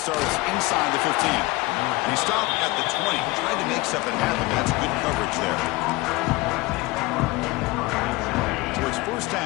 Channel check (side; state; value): right; quieter; 21.7 dB